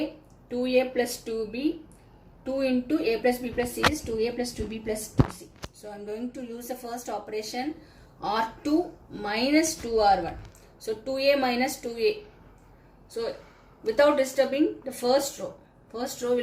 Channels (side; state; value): both; identical; correlation 1.00